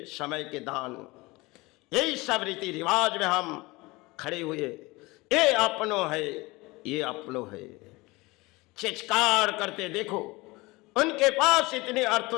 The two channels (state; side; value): quieter; right; 22.7 dB